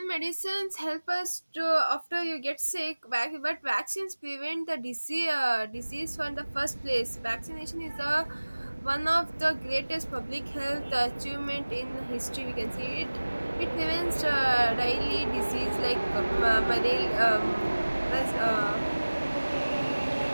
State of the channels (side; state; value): both; inverted; correlation -1.00